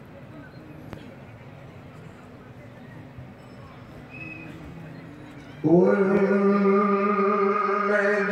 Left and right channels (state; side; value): identical; both; correlation 1.00